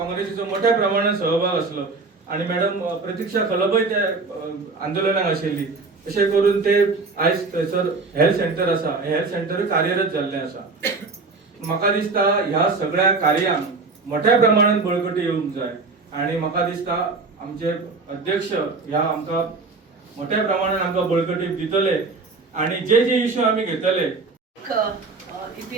मोठ्या प्रमाणात सहभाग आसलो आणि मॅडम प्रतीक्षा खलबय त्या आंदोलनाक आशिल्ली. अशें करून ते आयज थंयसर हेल्थ सेंटर आसा हे हेल्थ सेंटर कार्यरत जाल्लें आसा. म्हाका दिसता ह्या सगळ्या कार्यांक मोठ्या प्रमाणात बळकटी येवंक जाय आणि म्हाका दिसता आमचे अध्यक्ष ह्या आमकां मोठ्या प्रमाणात आमकां बळकटी दितले आणि जे इश्यू आमी घेतले.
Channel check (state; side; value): quieter; left; 3.9 dB